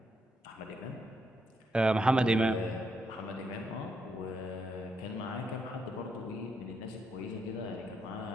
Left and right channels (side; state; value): both; normal; correlation 0.79